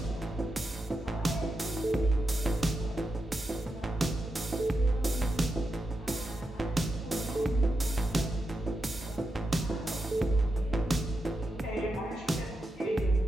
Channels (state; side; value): normal; both; correlation 0.87